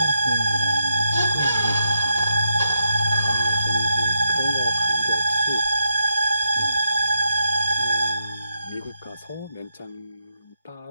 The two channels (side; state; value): both; inverted; correlation -0.81